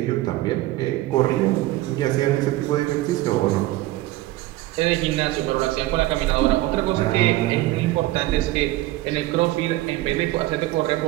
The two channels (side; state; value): left; quieter; 17.2 dB